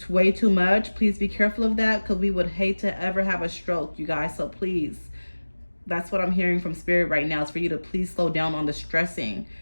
way too much. Please be careful of that, because we would hate to ever have a stroke, you guys. So please, that's what I'm hearing from spirit right now, is for you to please slow down on the stressing,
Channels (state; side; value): inverted; both; correlation -1.00